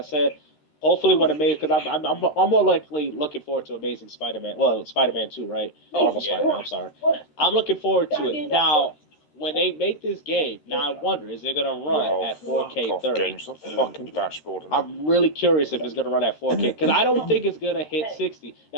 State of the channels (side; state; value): right; late; 13 ms